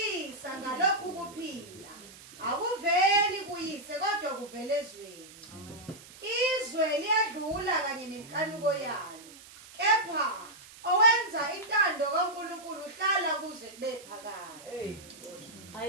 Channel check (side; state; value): right; noise; hiss, 19 dB below the sound